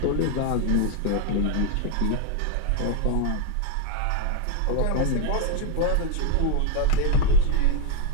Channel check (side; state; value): both; different; correlation 0.00